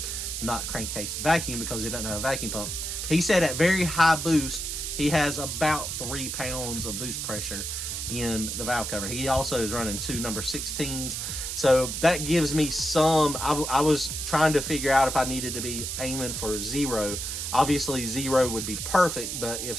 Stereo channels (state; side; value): noise; right; hiss, 4 dB below the sound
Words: not crankcase vacuum, because he doesn't have a vacuum pump. He said at very high boost, he has about 3 pounds of boost pressure in the valve cover. He also is running 2 number 16s. So that gives me some, I was trying to figure out if I needed to be aiming for 0. Obviously 0 would be perfect, but if